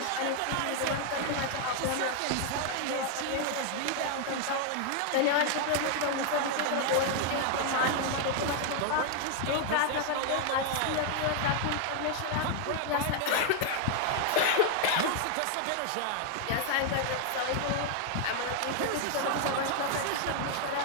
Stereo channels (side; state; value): both; different; correlation 0.00